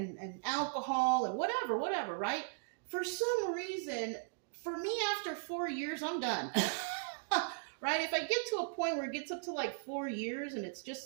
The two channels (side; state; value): left; silent; digital silence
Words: alcohol and whatever, right? For some reason, for me, after 4 years, I'm done. Right? If I get to a point where it gets up to like 4 years and it's